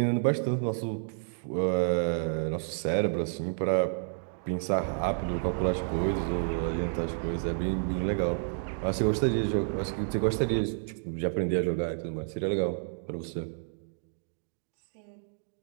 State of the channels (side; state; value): left; silent; digital silence